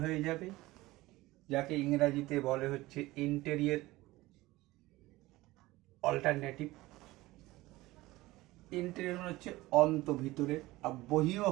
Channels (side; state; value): left; quieter; 19.0 dB